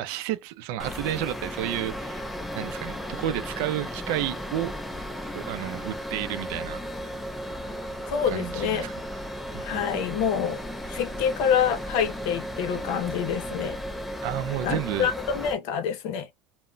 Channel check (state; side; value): normal; both; correlation 0.22